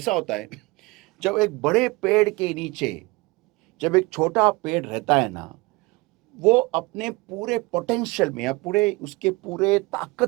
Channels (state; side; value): quieter; left; 23.9 dB